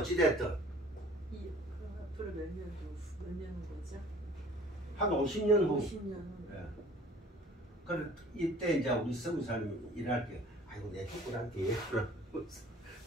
앞으로 몇 년 거죠? 한 50년 후. 50년 후. 네. 그래 이때 이제 우리 서구사님이 일할 때 아이고 내 죽고난게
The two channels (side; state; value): both; normal; correlation 0.50